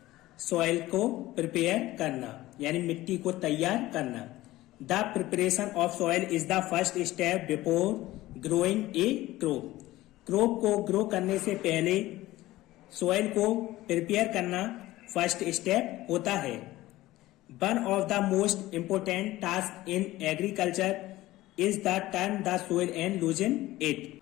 सॉइल को प्रिपेयर करना यानी मिट्टी को तैयार करना। The preparation of soil is the first step before growing A crop. Crop को ग्रो करने से पहले सॉइल को प्रिपेयर करना फर्स्ट स्टेप होता है। One of the most important task in agriculture is the turn the soil and loosen it.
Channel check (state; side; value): quieter; right; 17.0 dB